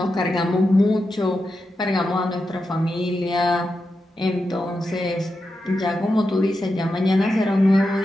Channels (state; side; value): normal; both; correlation 0.88